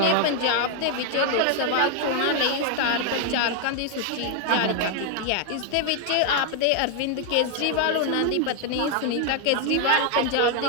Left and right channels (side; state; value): both; different; correlation 0.00